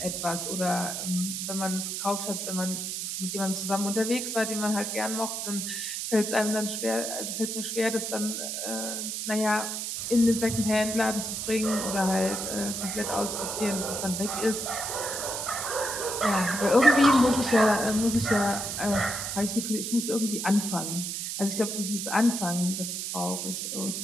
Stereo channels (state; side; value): noise; right; hiss, 4 dB below the sound